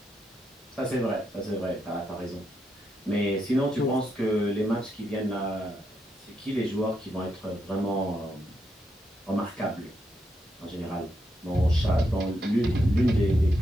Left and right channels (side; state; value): both; normal; correlation 0.81